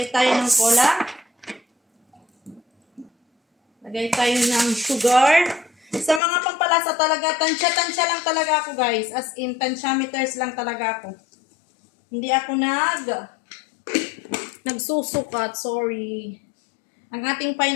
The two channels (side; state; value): right; drops out; at 6.2 s